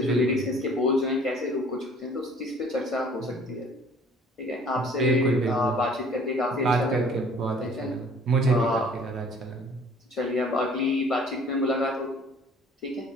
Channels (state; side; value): normal; both; correlation 0.53